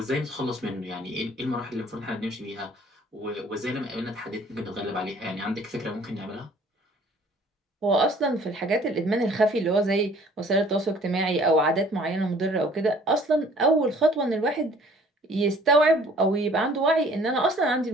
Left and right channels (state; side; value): normal; both; correlation 0.54